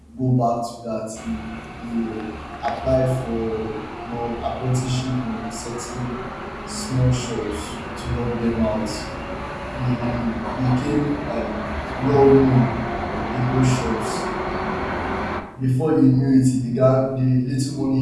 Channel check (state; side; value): identical; both; correlation 1.00